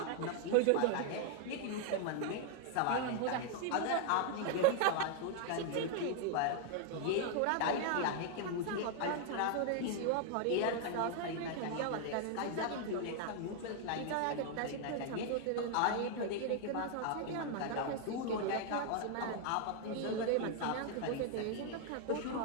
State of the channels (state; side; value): different; both; correlation 0.00